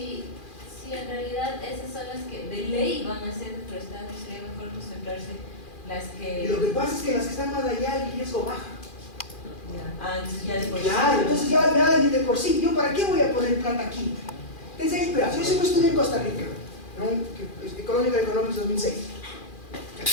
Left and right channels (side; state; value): right; late; 2.4 ms